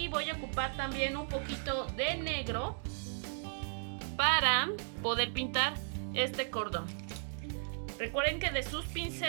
voy a ocupar también un poquito de negro para poder pintar este cordón. Recuerden que de sus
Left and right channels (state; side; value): silent; left; digital silence